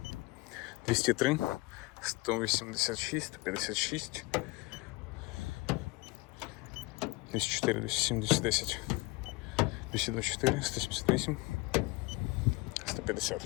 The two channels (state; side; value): quieter; right; 24.0 dB